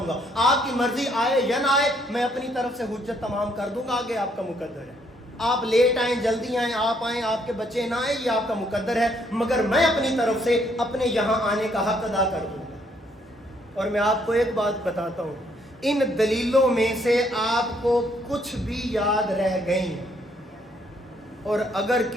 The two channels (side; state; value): both; normal; correlation 0.69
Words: گا، آپ کی مرضی آئے یا نہ آئے، میں اپنی طرف سے حجت تمام کر دوں گا، آگے آپ کا مقدر ہے. آپ لیٹ آئیں جلدی آئیں، آپ آئیں آپ کے بچے نہ آئیں، یہ آپ کا مقدر ہے، مگر میں اپنی طرف سے اپنے یہاں آنے کا حق ادا کر دوں گا. اور میں آپ کو ایک بات بتاتا ہوں، ان دلیلوں میں سے آپ کو کچھ بھی یاد رہ گئیں، اور اگر